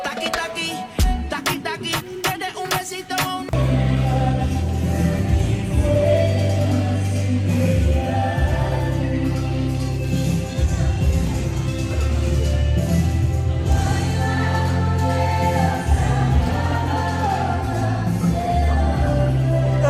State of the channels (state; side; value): identical; both; correlation 1.00